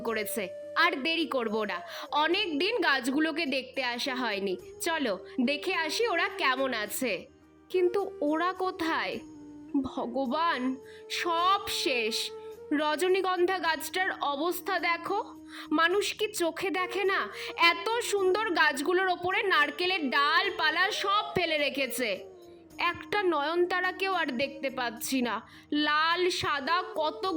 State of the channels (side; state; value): both; identical; correlation 1.00